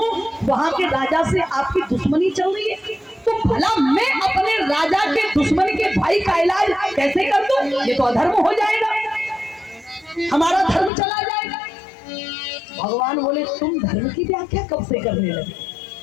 वहां के राजा से आपकी दुश्मनी चल रही है, तो भला मैं अपने राजा के दुश्मन के भाई का इलाज कैसे कर दूं? ये तो अधर्म हो जाएगा, हमारा धर्म चला जाएगा। भगवान बोले तुम धर्म की व्याख्या कब से करने लगे?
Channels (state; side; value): drops out; right; at 10.9 s